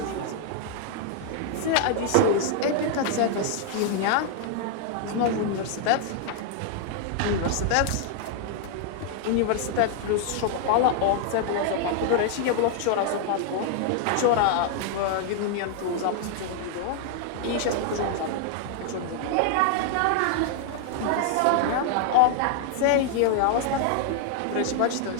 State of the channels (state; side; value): different; both; correlation 0.00